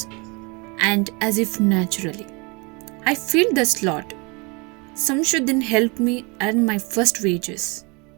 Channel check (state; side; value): quieter; left; 29.2 dB